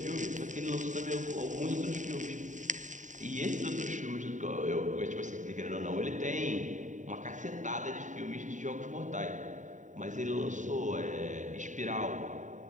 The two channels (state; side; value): late; left; 0.36 ms